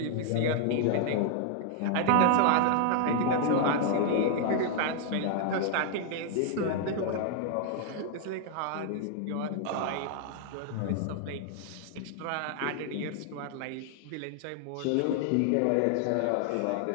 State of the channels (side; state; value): both; different; correlation 0.00